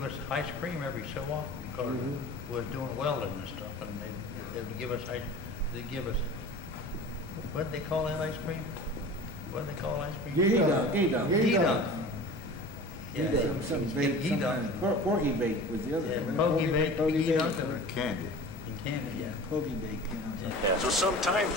us ice cream every so often because we was doing welding and stuff, and they would give us what did they call that ice cream? What did they call ice cream? G-Dunk. Yeah, G-Dunk. Porky bake was the other one. Pokey bake, G-Dunk, And candy. and candy, yeah. Pokey bake. Yeah, so sometimes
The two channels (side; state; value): both; normal; correlation 0.38